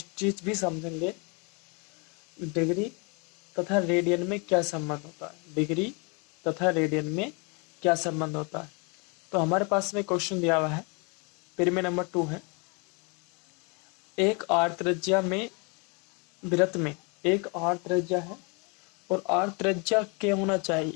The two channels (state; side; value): quieter; right; 32.6 dB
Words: चीज भी समझेंगे, डिग्री तथा रेडियन में क्या संबंध होता है। डिग्री तथा रेडियन में क्या संबंध होता है। तो हमारे पास में क्वेश्चन दिया हुआ है, परिमेय नंबर 2 है। एक आर त्रिज्या में वृत्त में एक आर त्रिज्या है और आर त्रिज्या क्या होना